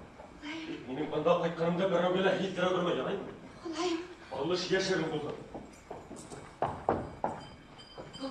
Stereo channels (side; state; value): both; identical; correlation 1.00